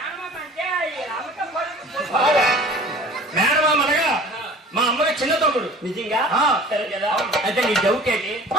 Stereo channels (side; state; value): both; normal; correlation 0.45